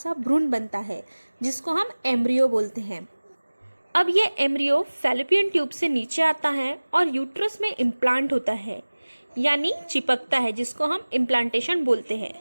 भ्रूण बनता है जिसको हम एम्ब्रियो बोलते हैं। अब ये एम्ब्रियो फैलोपियन ट्यूब से नीचे आता है और यूट्रस में इम्प्लांट होता है, यानी चिपकता है, जिसको हम इम्प्लांटेशन बोलते हैं।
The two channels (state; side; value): inverted; both; correlation -1.00